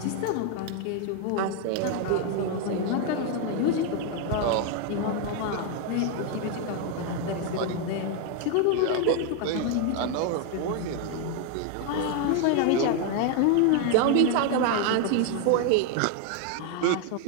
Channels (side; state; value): both; different; correlation 0.01